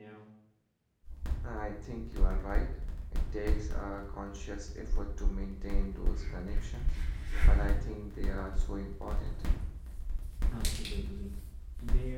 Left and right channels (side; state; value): both; identical; correlation 1.00